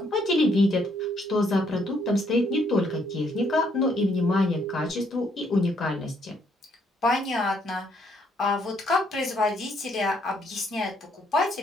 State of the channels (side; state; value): both; normal; correlation 0.70